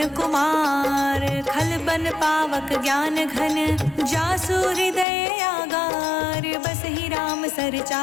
कुमार खलबन पावक ज्ञान घन जासु हृदय आगार बसहि राम सर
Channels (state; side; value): drops out; right; at 5.1 s